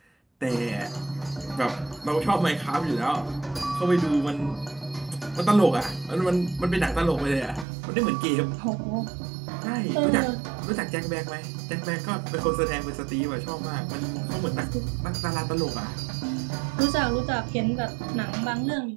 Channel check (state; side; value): drops out; left; at 7.7 s